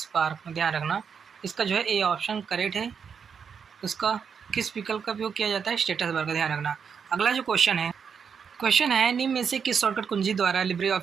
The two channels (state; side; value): quieter; left; 6.7 dB